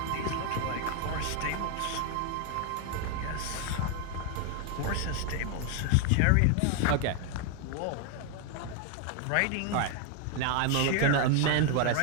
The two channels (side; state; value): both; different; correlation 0.01